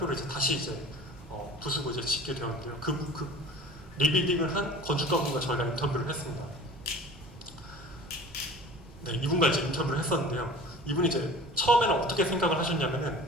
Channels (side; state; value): both; normal; correlation 0.41